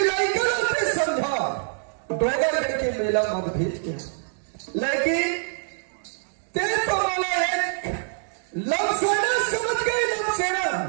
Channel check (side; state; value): left; silent; digital silence